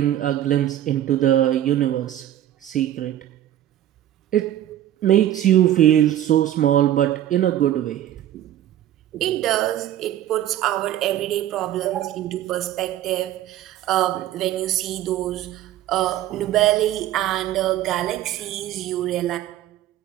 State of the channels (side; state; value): left; quieter; 12.4 dB